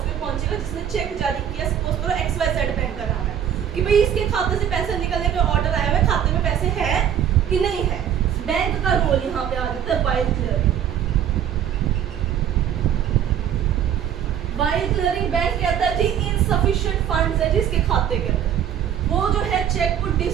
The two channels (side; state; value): left; quieter; 9.5 dB